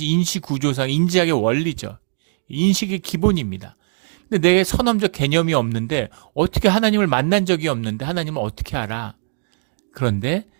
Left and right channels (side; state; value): left; silent; digital silence